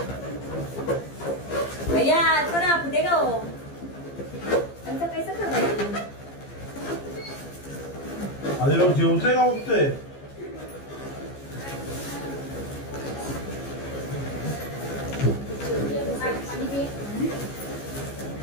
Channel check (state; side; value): late; right; 15 ms